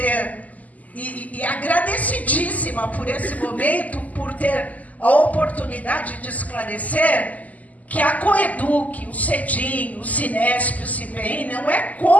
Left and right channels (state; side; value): late; right; 0.076 ms